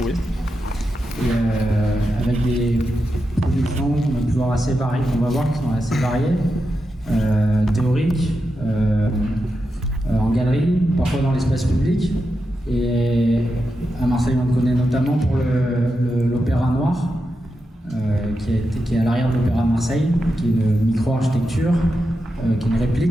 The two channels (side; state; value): both; normal; correlation 0.88